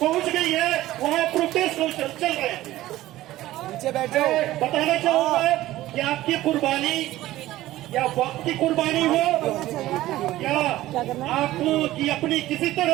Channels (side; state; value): left; quieter; 15.7 dB